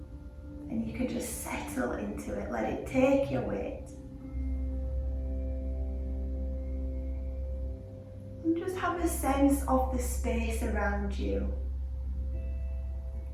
And you can just settle into it, let it take your weight. And just have a sense of the space around you.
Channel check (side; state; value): both; identical; correlation 1.00